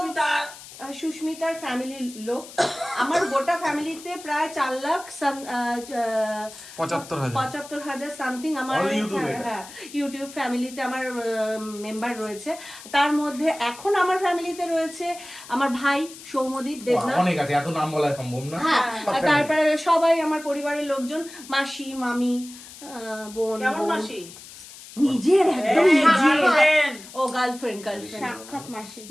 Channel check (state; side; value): noise; left; hiss, 16 dB below the sound